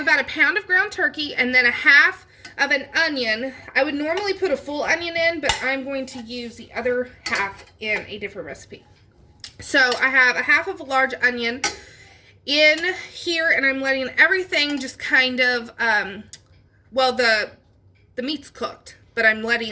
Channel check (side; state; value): both; identical; correlation 1.00